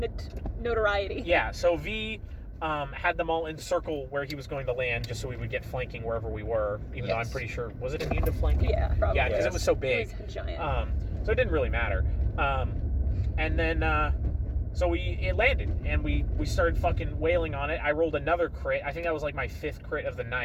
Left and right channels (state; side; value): identical; both; correlation 1.00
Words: notoriety. Yeah, so V had them all encircle where he was going to land, just so we would get flanking wherever we were. Even though I'm pretty sure, was it immune to flanking? Yeah, probably. Yeah, because it was so big. It was giant. So it didn't really matter. And then so it landed, and we started fucking wailing on it. I rolled another crit. I think that was like my 5th crit of the